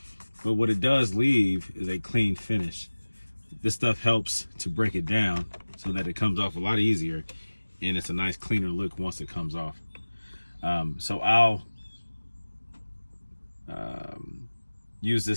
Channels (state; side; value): inverted; both; correlation -1.00